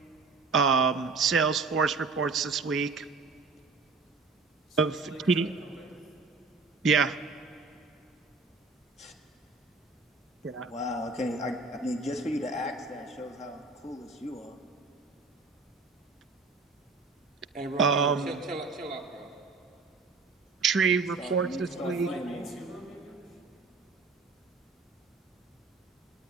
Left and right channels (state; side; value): quieter; left; 4.3 dB